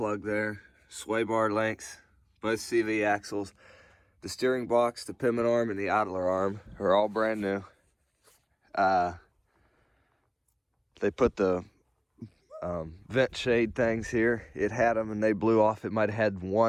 there, sway bar links, both CV axles. The steering box, the pivot arm, and the idler arm are all brand new. They put the vent shade things here. It had them and they blew off. It might have had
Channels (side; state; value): both; identical; correlation 1.00